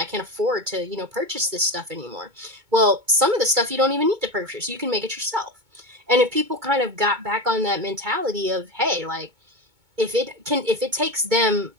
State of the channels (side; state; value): left; late; 2.2 ms